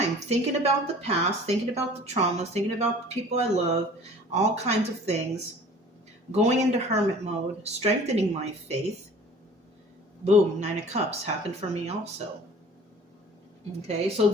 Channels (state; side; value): normal; both; correlation 0.47